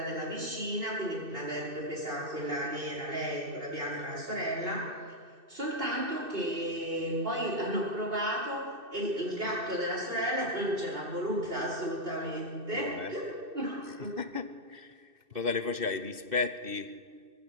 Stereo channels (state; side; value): late; left; 2.6 ms